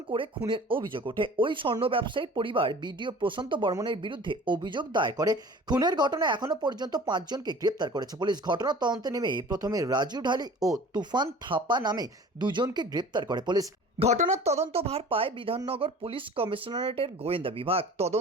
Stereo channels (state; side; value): normal; both; correlation 0.43